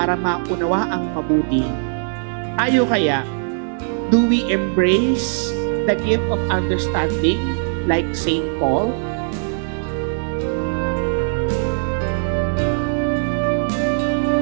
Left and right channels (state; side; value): silent; left; 66 dB below the other